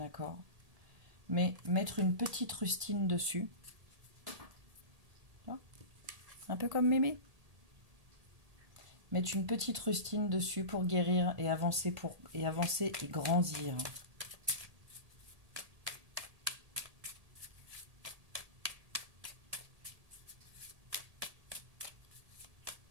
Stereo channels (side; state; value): left; late; 1.8 ms